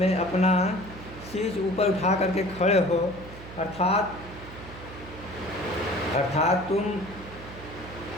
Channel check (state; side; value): noise; right; hum, 15 dB below the sound